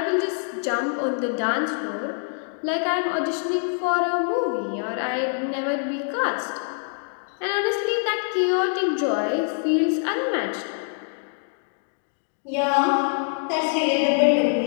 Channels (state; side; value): silent; right; 57 dB below the other